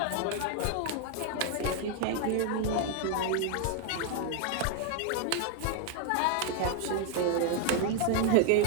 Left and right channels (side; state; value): both; different; correlation 0.00